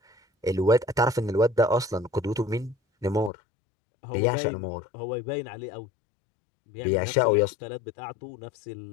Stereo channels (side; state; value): right; drops out; at 3.3 s